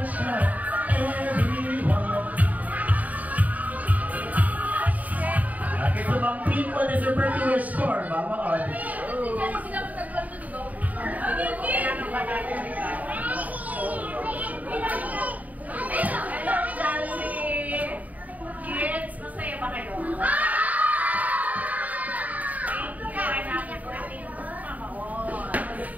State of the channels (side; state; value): left; late; 0.074 ms